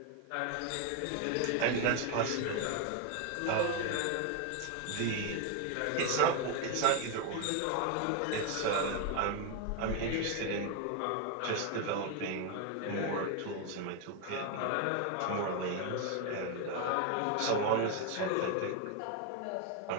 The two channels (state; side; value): different; both; correlation 0.01